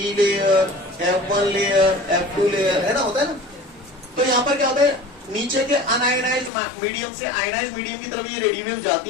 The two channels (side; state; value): right; drops out; at 6.5 s